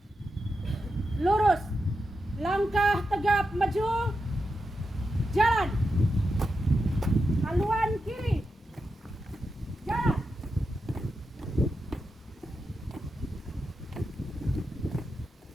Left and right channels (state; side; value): normal; both; correlation 0.88